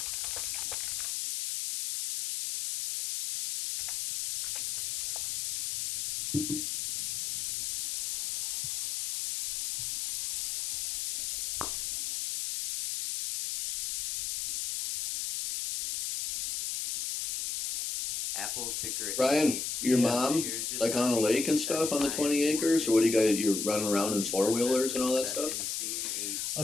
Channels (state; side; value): noise; left; hiss, 2 dB below the sound